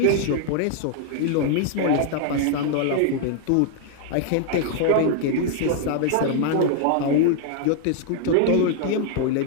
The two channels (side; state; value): both; different; correlation 0.00